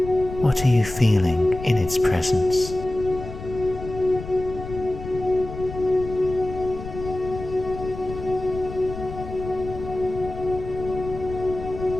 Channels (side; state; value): left; noise; rumble, 11 dB below the sound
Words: What are you feeling in its presence?